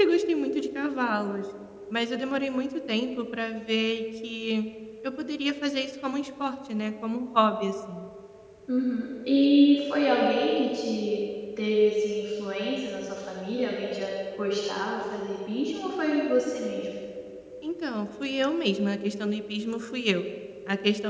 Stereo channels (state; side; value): identical; both; correlation 1.00